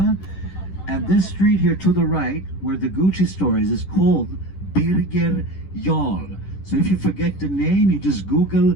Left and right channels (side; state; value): right; late; 10 ms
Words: And this street here to the right, where the Gucci store is called Birger Jarl. So if you forget the name, you just Google